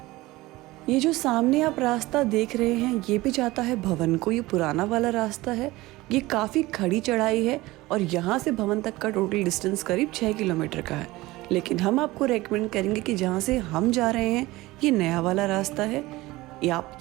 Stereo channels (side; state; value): left; quieter; 19.4 dB